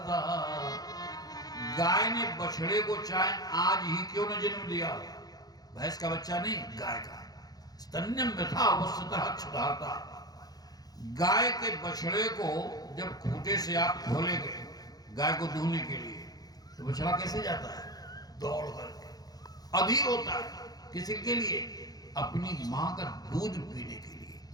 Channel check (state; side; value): late; right; 0.19 ms